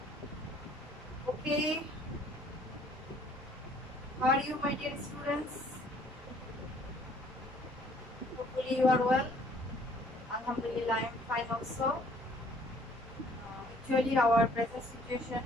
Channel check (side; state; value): both; normal; correlation 0.58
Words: Okay, how are you, my dear students? Hopefully you are well. Alhamdulillah, I am fine also. Actually, our present situation